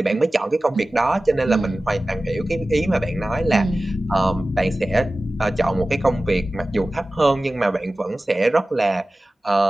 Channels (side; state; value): both; normal; correlation 0.96